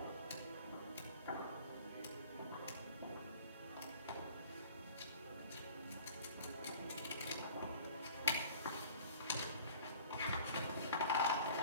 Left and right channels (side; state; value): both; inverted; correlation -0.47